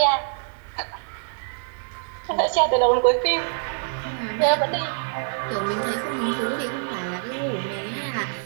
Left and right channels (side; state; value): left; silent; 61 dB below the other